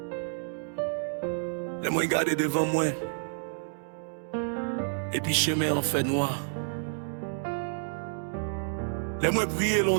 Laisse-moi regarder devant moi. Et puis chemin en fait noir. Laisse-moi prier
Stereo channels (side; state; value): left; silent; digital silence